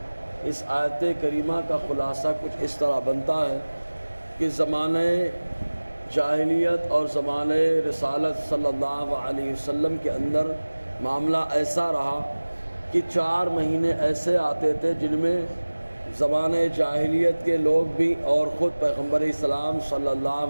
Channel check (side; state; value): both; inverted; correlation -1.00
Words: اس آیت کریمہ کا خلاصہ کچھ اس طرح بنتا ہے کہ زمانہ جاہلیت اور زمانہ رسالت صلی اللہ علیہ وسلم کے اندر معاملہ ایسا رہا کہ 4 مہینے ایسے آتے تھے جن میں زمانہ جاہلیت کے لوگ بھی اور خود پیغمبر اسلام صلی